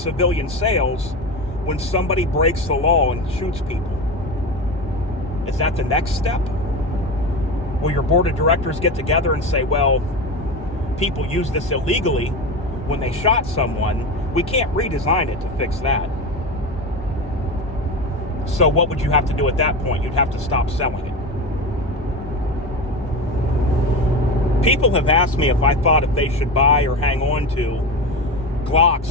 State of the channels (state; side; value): normal; both; correlation 0.23